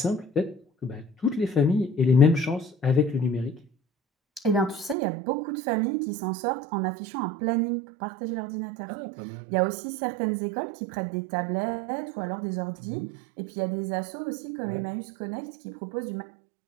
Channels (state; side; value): drops out; left; at 5.0 s